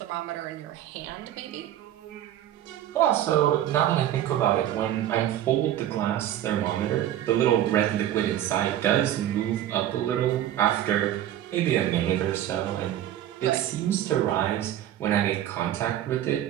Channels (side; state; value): left; quieter; 12.0 dB